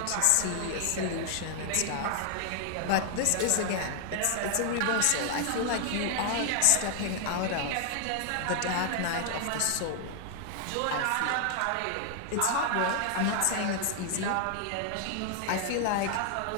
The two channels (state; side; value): different; both; correlation 0.00